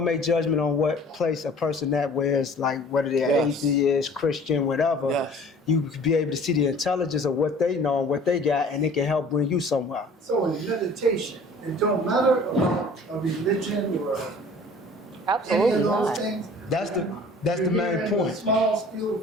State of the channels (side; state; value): both; normal; correlation 0.48